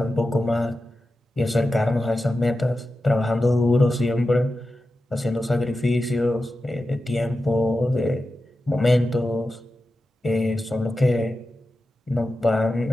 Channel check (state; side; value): normal; both; correlation 0.92